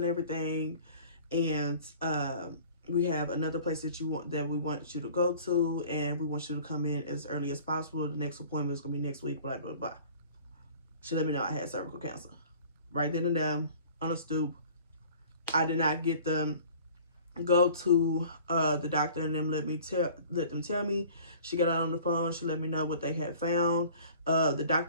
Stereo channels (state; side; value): inverted; both; correlation -0.48